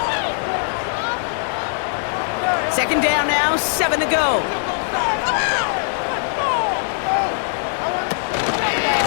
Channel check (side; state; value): right; silent; 65 dB below the other